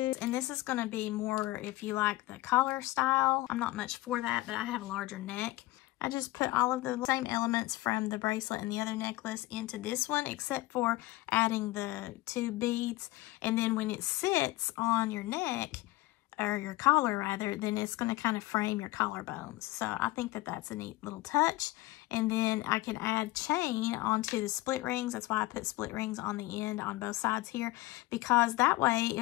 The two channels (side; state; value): right; quieter; 19.0 dB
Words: And this is going to be more if you like the collar style. I'm not much for that, but I have a larger neck. I just put all of the same elements from the bracelet and the other necklace into this one, except for adding the 2 beads. And then when it sits on your neck, or your collar rather, then it's going to kind of frame your collarbones. So I think that that's a neat little touch. And then I can add chain onto the split rings. That's why I put split rings on the end on both sides here, because that way